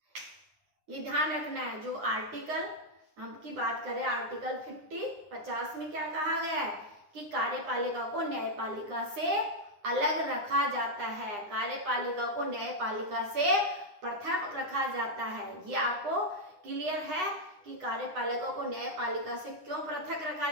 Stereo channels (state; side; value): late; left; 9.7 ms